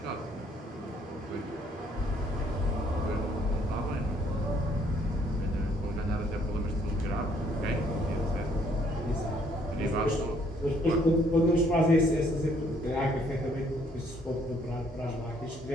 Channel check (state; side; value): normal; both; correlation 0.65